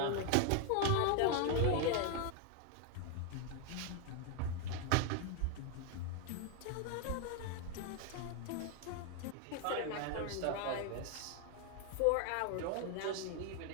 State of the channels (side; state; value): both; different; correlation 0.01